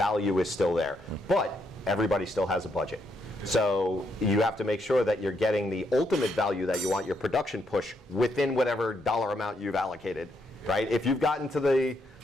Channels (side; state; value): both; normal; correlation 0.77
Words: is still there. But everybody still has a budget. So you have to make sure that you're getting the ultimate value that you want, your production push, within whatever dollar amount you've allocated, right? If you've gotten to the